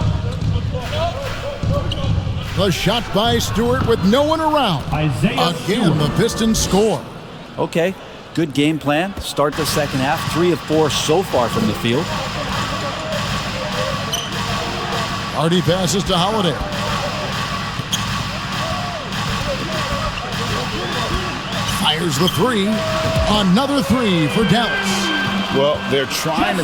The shot by Stewart with no one around. Again, the Pistons score. Okay, good game plan. Start the second half. 3 of 4 so far from the field. Hardy passes to Holiday. Fires the 3. Another 3 for Dallas. Well, they're trying to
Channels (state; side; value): identical; both; correlation 1.00